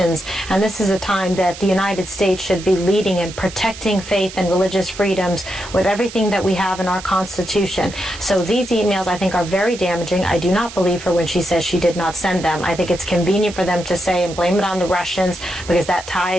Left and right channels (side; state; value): right; noise; hiss, 14 dB below the sound